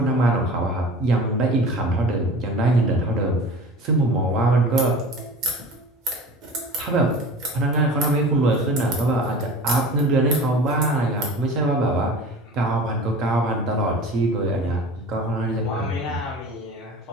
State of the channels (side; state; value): both; normal; correlation 0.38